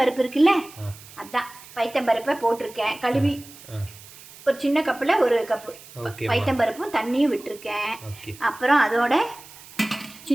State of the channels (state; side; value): noise; right; hiss, 19 dB below the sound